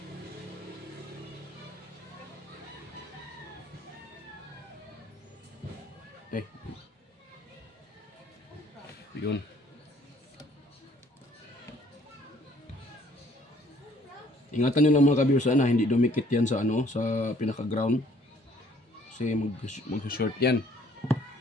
Yun. Ingatan nyo lang mga ka-viewers na hindi dumikit yan sa sa pinaka-ground. Kasi mag-short yan.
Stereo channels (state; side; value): normal; both; correlation 0.60